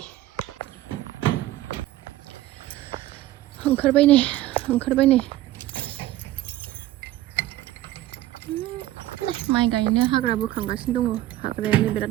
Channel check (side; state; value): left; quieter; 15.0 dB